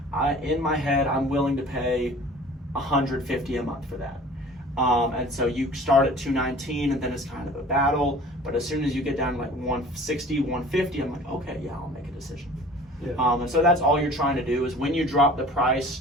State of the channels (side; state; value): both; normal; correlation 0.45